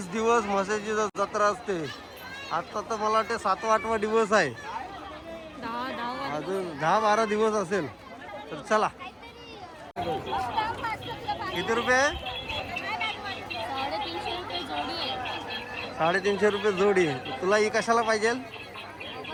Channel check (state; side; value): identical; both; correlation 1.00